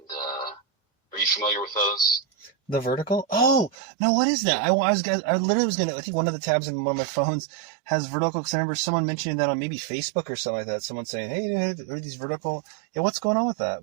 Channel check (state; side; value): drops out; left; at 3.8 s